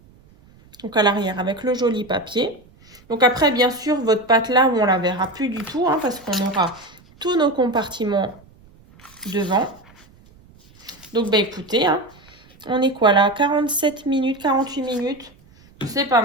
Donc, à l'arrière, avec le joli papier. Donc, après, bien sûr, votre pâte là, on la verra plus du tout, hein, parce qu'on aura tous nos compartiments devant. Donc, bah écoutez, hein, on est quoi là? 47 minutes, 48 minutes. C'est pas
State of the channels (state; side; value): noise; right; rumble, 27 dB below the sound